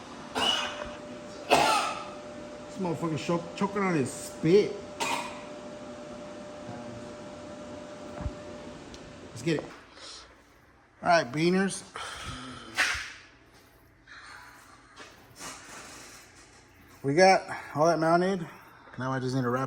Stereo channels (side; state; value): both; identical; correlation 1.00